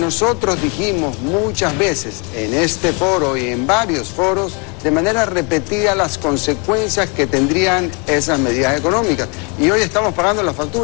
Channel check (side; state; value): right; quieter; 33.4 dB